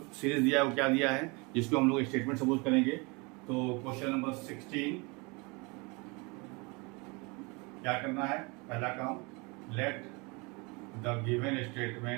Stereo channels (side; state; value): left; quieter; 28.4 dB